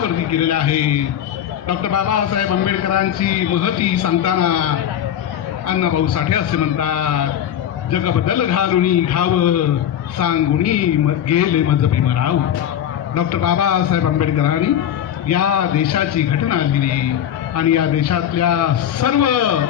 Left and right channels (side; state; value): right; quieter; 10.2 dB